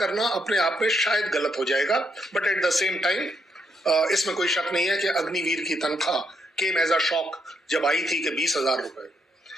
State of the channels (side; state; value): both; normal; correlation 0.77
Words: अपने आप में शायद गलत हो जाएगा, but at the same time इसमें कोई शक नहीं है कि अग्निवीर की तनख्वाह केम एज अ शॉक जब आई थी कि 20,000 रुपए।